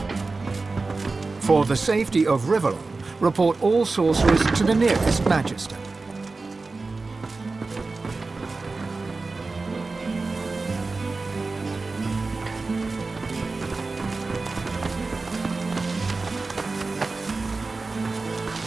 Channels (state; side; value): quieter; left; 3.8 dB